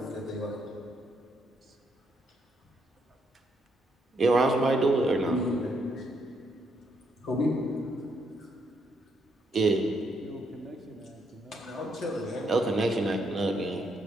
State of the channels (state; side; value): normal; both; correlation 0.75